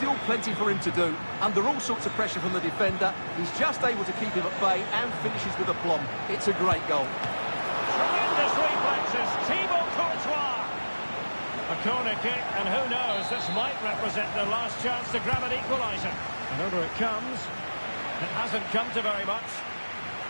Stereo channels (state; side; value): inverted; both; correlation -1.00